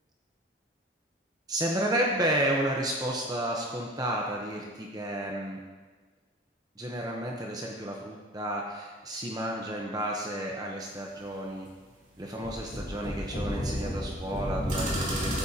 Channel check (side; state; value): both; normal; correlation 0.44